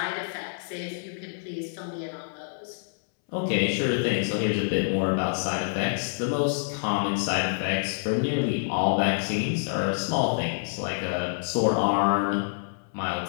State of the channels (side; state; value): right; silent; 60 dB below the other